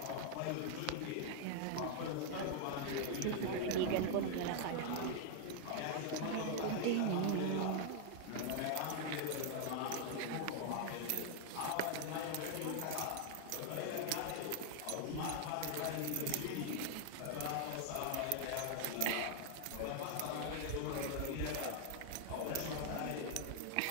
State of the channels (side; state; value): both; different; correlation 0.00